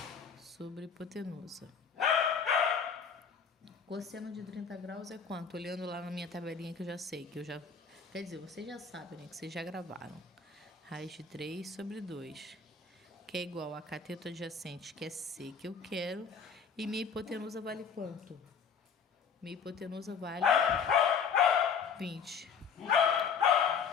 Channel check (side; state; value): right; quieter; 6.2 dB